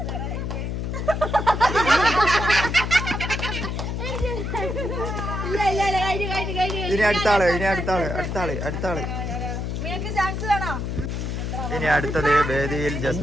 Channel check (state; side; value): noise; left; hum, 3 dB below the sound